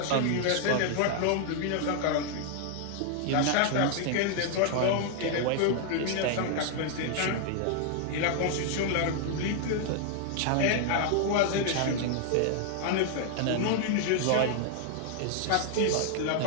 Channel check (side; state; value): both; different; correlation 0.00